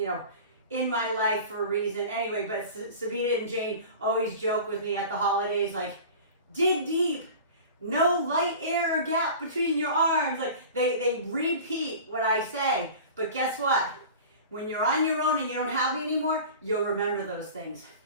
know, in my life for a reason. Anyway, but Sabina and Jane always joke with me at the holidays, like, dig deep. No light air or gap between your arms. Like they repeat what I say. But guess what? When you're on your own and you don't have me anymore, you'll remember those things.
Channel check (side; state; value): both; inverted; correlation -0.38